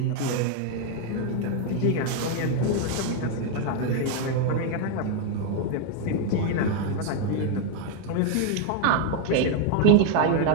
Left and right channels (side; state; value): both; different; correlation 0.00